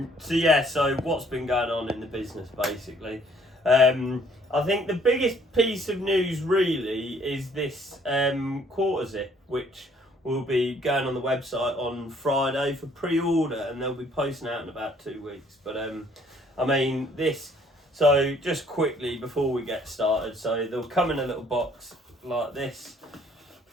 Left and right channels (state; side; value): normal; both; correlation 0.61